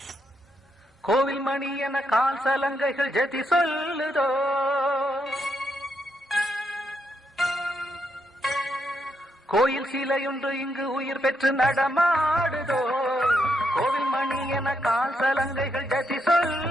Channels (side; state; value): both; normal; correlation 0.79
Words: கோவில் மணி என கால் சலங்கைகள் ஜதி சொல்லுதோ, கோயில் சிலையொன்று இங்கு உயிர் பெற்று நடமாடுதோ, கோவில் மணி என கால் சலங்கைகள் ஜதி